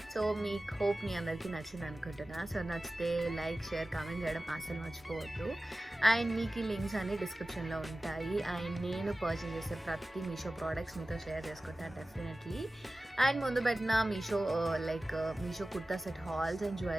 So మీకు హోప్ మీ అందరికీ నచ్చింది అనుకుంటున్నా. సో నచ్చితే లైక్, షేర్, కామెంట్ చేయడం అసలు మర్చిపోవద్దు. అండ్ మీకు ఈ లింక్స్ అన్ని డిస్క్రిప్షన్లో ఉంటాయి. అండ్ నేను పర్చేస్ చేసే ప్రతి మీషో ప్రోడక్ట్స్ మీతో షేర్ చేసుకుంటాను డెఫినెట్లీ. అండ్ ముందు పెట్టిన Meesho Meesho kurta set halls and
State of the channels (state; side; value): normal; both; correlation 0.96